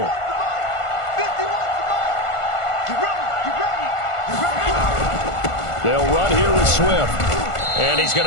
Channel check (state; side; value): late; right; 1.5 ms